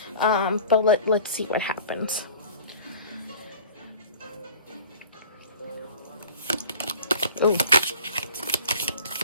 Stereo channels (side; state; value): both; inverted; correlation -0.44